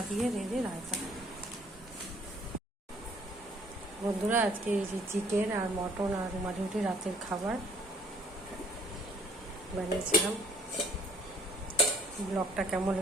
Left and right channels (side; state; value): both; normal; correlation 0.60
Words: দিয়ে রেঁধে রায়তা। বন্ধুরা, আজকে এই যে চিকেন আর মটন আর রুমালি রুটি রাতের খাবার বানিয়েছিলাম। ব্লগটা কেমন